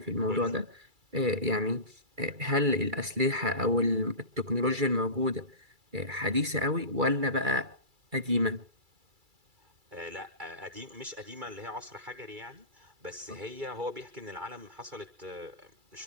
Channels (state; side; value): late; left; 2.3 ms